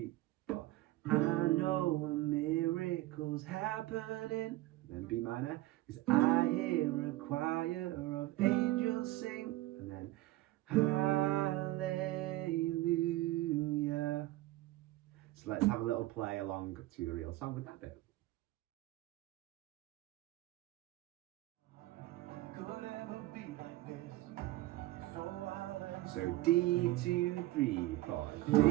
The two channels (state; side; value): quieter; left; 17.5 dB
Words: 4. I know a miracle's happening. Then B minor, because I hear a choir of angels sing. And then hallelujah. So let's have a little play along to the real song with that bit. So D, 2, 3, 4, D.